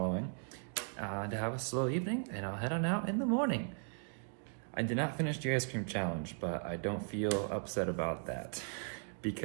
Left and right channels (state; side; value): silent; left; 53 dB below the other